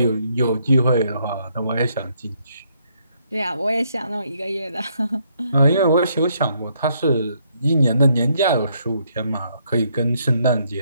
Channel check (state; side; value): inverted; both; correlation -0.72